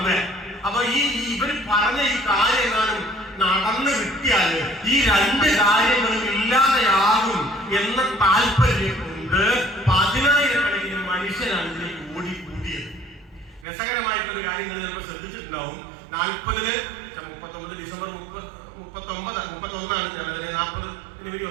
അപ്പൊ ഇവര് പറഞ്ഞ ഈ കാര്യങ്ങളും നടന്നു കിട്ടിയാല് ഈ 2 കാര്യങ്ങളും ഇല്ലാതെയാകും എന്ന താല്പര്യം കൊണ്ട് 10,000-കണക്കിന് മനുഷ്യരാണ് ഇതിലേക്ക് ഓടിക്കൂടിയത്. രസകരമായിട്ടൊരു കാര്യം നിങ്ങൾ ചിലപ്പോൾ ശ്രദ്ധിച്ചിട്ടുണ്ടാവും. 39 ഡിസംബർ 31 40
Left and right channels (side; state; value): left; drops out; at 13.7 s